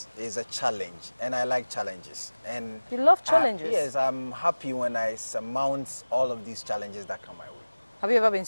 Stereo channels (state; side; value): inverted; both; correlation -1.00